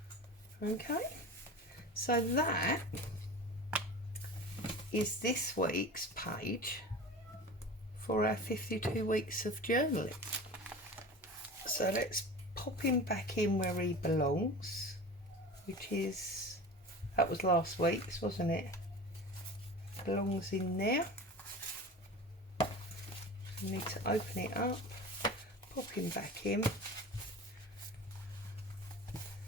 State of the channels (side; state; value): both; normal; correlation 0.34